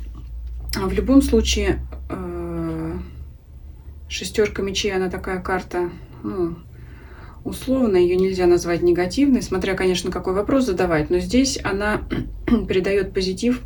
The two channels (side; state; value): both; identical; correlation 1.00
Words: в любом случае шестерка мечей, она такая карта, ну, условно, ее нельзя назвать негативной, смотря, конечно, какой вопрос задавать, но здесь она придает позитив